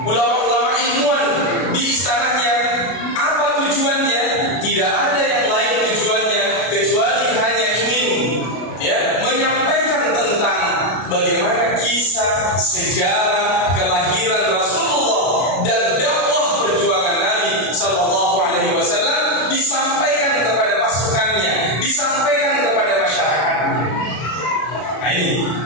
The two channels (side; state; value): right; late; 33 ms